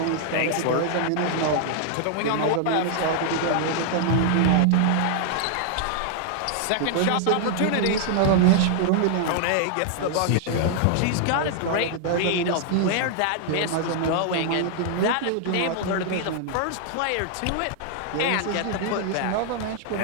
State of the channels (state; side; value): different; both; correlation -0.01